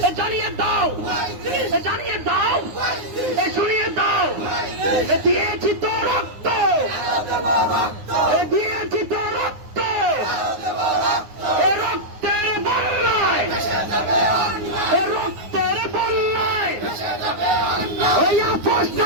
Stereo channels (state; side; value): late; left; 9.6 ms